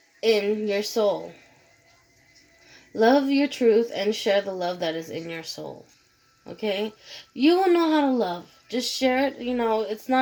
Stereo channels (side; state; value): both; identical; correlation 1.00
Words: in your soul. Love your truth and share the love that is in your soul. Okay? You will know how to love. Just share it. It's